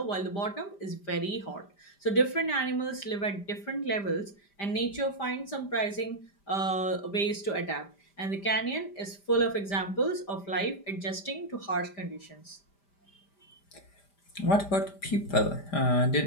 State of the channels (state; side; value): late; right; 5.0 ms